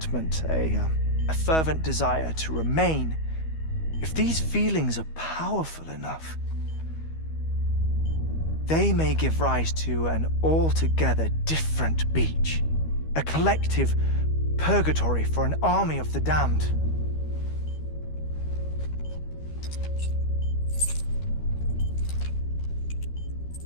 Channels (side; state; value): right; late; 13 ms